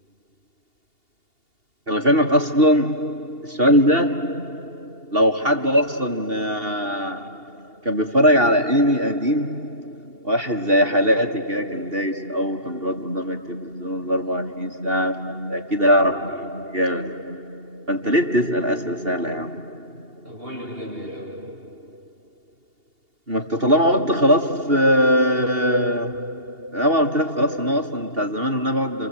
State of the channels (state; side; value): late; left; 2.8 ms